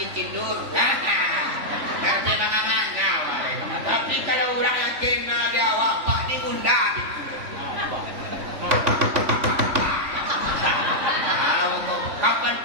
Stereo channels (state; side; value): late; left; 3.4 ms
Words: tidur. Rapi mangang-mangang. Tapi kalau orang yang kenal dia awak, pak ni bunda gitu. Kapan